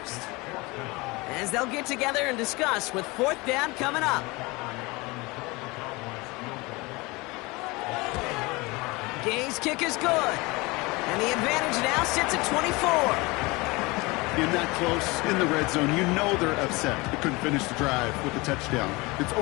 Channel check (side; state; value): right; quieter; 24.2 dB